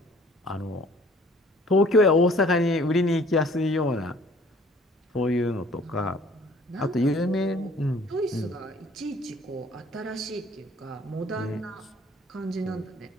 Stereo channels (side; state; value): both; normal; correlation 0.55